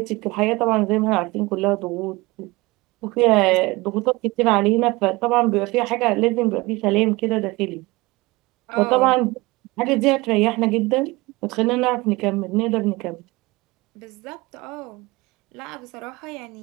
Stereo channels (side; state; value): left; quieter; 22.6 dB